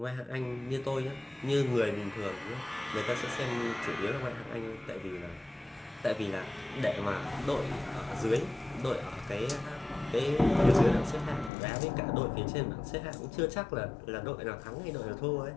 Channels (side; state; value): right; drops out; at 11.5 s